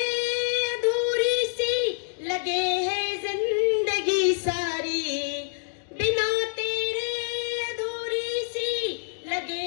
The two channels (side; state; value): right; silent; digital silence